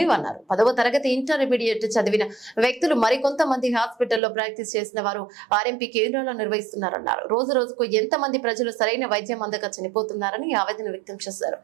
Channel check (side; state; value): left; drops out; at 4.2 s